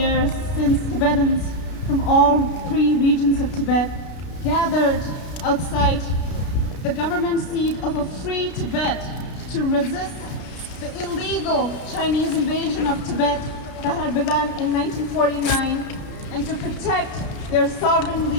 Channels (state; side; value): late; right; 33 ms